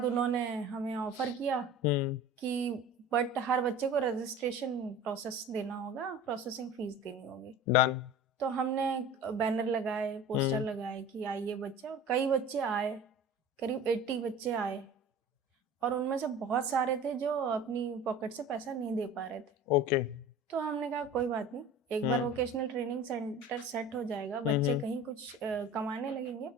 उन्होंने हमें ऑफ़र किया कि बट हर बच्चे को रजिस्ट्रेशन प्रोसेस देना होगा, प्रोसेसिंग फ़ीस देनी होगी। डन। तो हमने बैनर लगाए, पोस्टर लगाए कि आइए बच्चे, और कई बच्चे आए, करीब 80 बच्चे आए, और उनमें से बहुत सारे थे जो अपनी पॉकेट से पैसा नहीं दे पा रहे थे। ओके। तो हमने कहा कोई बात नहीं, एक बार वोकेशनल ट्रेनिंग सेंटर सेट हो जाएगा, बच्चे कहीं कुछ कमाने लगेंगे,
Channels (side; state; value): both; normal; correlation 0.39